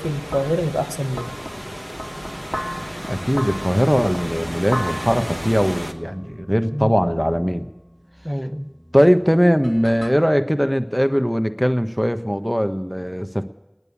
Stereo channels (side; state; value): both; identical; correlation 1.00